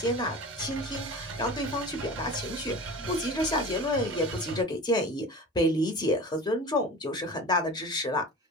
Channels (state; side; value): normal; both; correlation 0.35